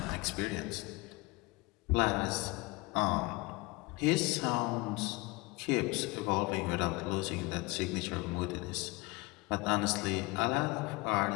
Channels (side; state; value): right; quieter; 24.1 dB